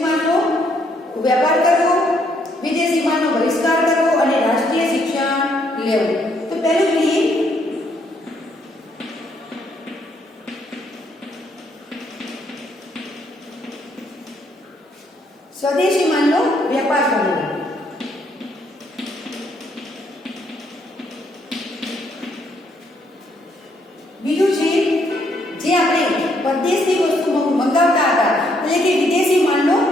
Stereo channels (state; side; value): normal; both; correlation 0.71